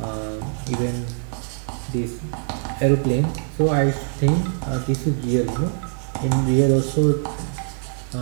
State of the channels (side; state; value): left; silent; 63 dB below the other